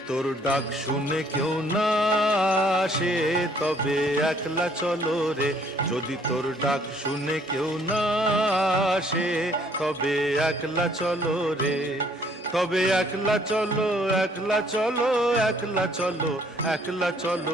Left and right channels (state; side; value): normal; both; correlation 0.62